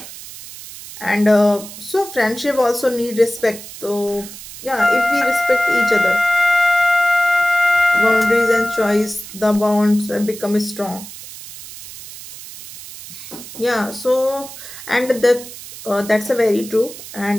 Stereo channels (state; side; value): noise; right; hiss, 14 dB below the sound